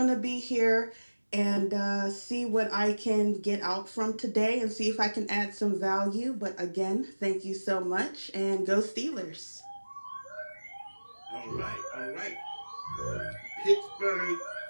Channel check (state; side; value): inverted; both; correlation -1.00